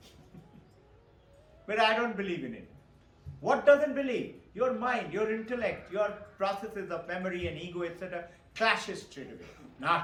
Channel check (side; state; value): both; identical; correlation 1.00